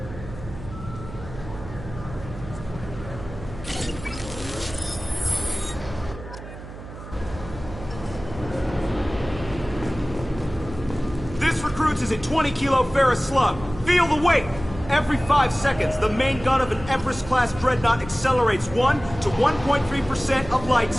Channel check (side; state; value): right; noise; hum, 13 dB below the sound